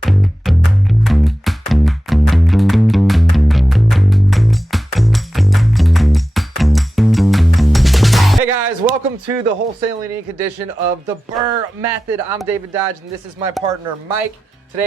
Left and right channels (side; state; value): both; normal; correlation 0.93